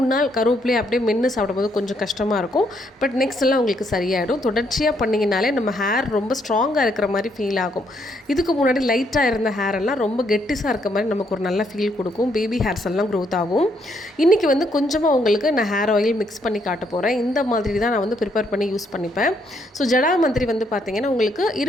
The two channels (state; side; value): normal; both; correlation 0.73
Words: நாள் கருவேப்பிலையை அப்படியே மென்று சாப்பிடும்போது கொஞ்சம் கஷ்டமாக இருக்கும். பட் நெக்ஸ்ட் எல்லாம் உங்களுக்கு சரியாயிடும். தொடர்ச்சியாக பண்ணிங்கனாலே நம்ம ஹேர் ரொம்ப ஸ்ட்ராங்காக இருக்கிற மாதிரி ஃபீல் ஆகும். இதுக்கு முன்னாடி லைட்டாக இருந்த ஹேர் எல்லாம் ரொம்ப கெட்டிஸாக இருக்க மாதிரி நமக்கு ஒரு நல்ல ஃபீல் கொடுக்கும். பேபி ஹேர்ஸ் எல்லாம் க்ரோத் ஆகும். இன்றைக்கி வந்து கொஞ்சமாக உங்களுக்கு நான் ஹேர் ஆயில் மிக்ஸ் பண்ணி காட்ட போகிறேன். இந்த மாதிரி தான் நான் வந்து ப்ரிப்பேர் பண்ணி யூஸ் பண்ணிப்பேன். ஸோ ஜடாமந்திரி வந்து பார்த்திங்கன்னா உங்களுக்கு